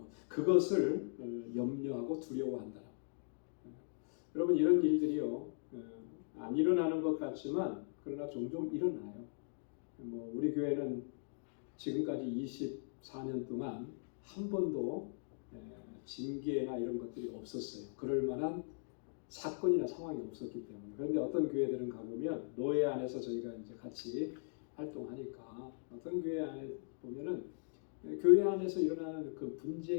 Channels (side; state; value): right; silent; digital silence